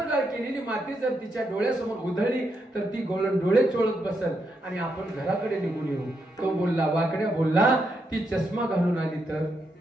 केलेली माती जर तिच्या डोळ्यासमोर उधळली तर ती गवळण डोळे चोळत बसल आणि आपण घराकडे निघून येऊ. तो बोलला, वाकड्या बोलला ती चष्मा घालून आली तर?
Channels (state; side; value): normal; both; correlation 0.81